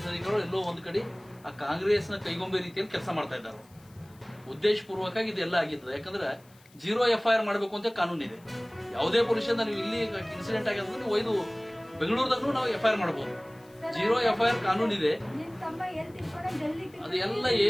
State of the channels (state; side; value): noise; left; hiss, 28 dB below the sound